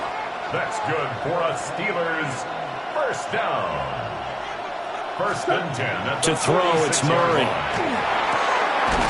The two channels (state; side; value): identical; both; correlation 1.00